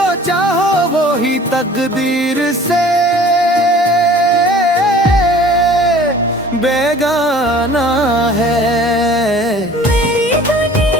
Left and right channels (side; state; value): both; normal; correlation 0.48